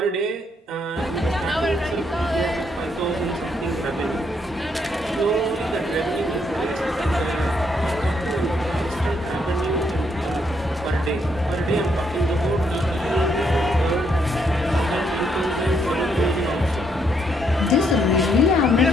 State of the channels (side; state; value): both; normal; correlation 0.74